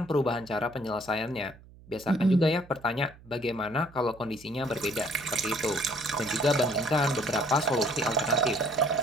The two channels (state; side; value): noise; right; hum, 22 dB below the sound